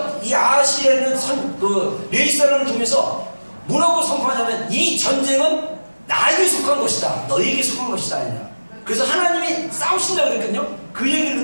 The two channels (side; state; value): both; inverted; correlation -1.00